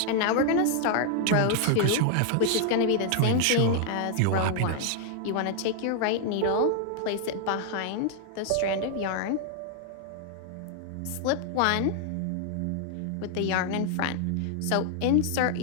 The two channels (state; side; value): different; both; correlation 0.00